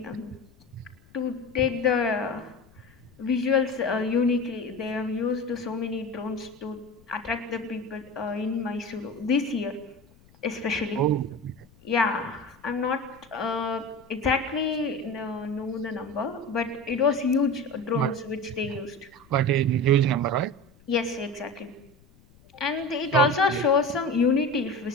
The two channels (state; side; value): noise; left; rumble, 28 dB below the sound